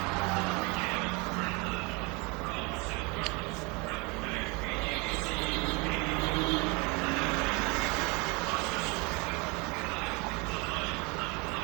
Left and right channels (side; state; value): left; quieter; 27.4 dB